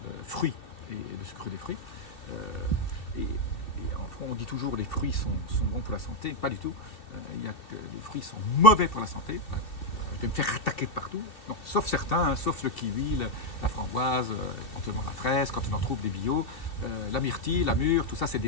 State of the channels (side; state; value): right; late; 2.6 ms